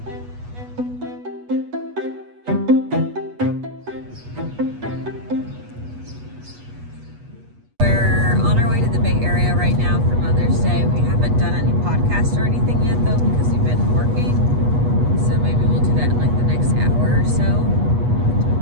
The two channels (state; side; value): late; left; 8.2 ms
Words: We're on our way to the Bay Area right now for Mother's Day. We haven't done any podcasts or anything yet though because we've been working. So maybe we'll do that in like the next hour or so.